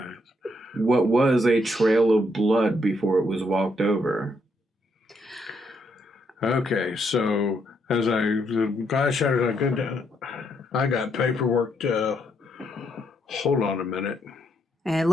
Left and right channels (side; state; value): both; normal; correlation 0.75